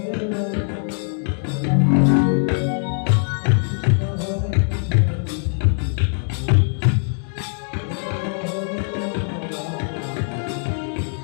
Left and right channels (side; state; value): right; silent; 58 dB below the other